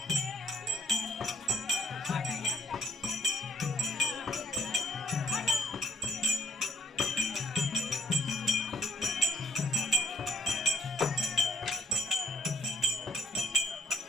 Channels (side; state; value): both; normal; correlation 0.56